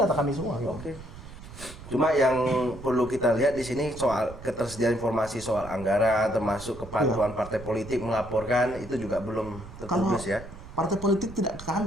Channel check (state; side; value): noise; right; rumble, 15 dB below the sound